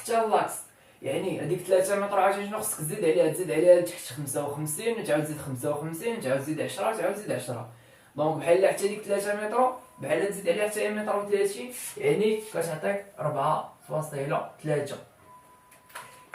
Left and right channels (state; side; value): identical; both; correlation 1.00